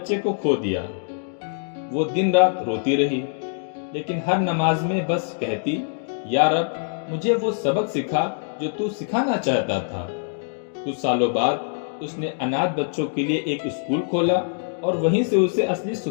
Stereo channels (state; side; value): silent; right; digital silence